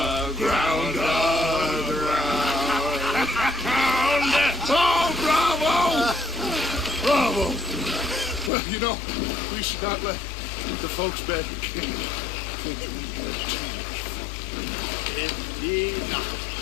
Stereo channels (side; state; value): right; drops out; at 8.5 s